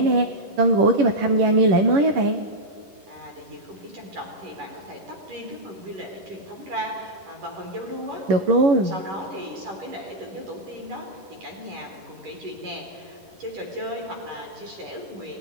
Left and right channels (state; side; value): late; left; 10 ms